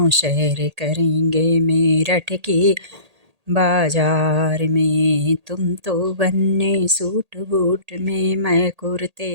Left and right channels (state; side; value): late; left; 1.8 ms